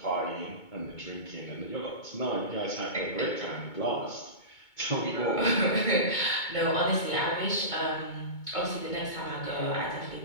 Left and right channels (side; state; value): right; late; 2.2 ms